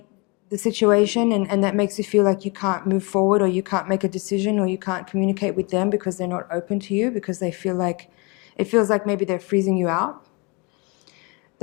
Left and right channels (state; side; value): quieter; right; 29.7 dB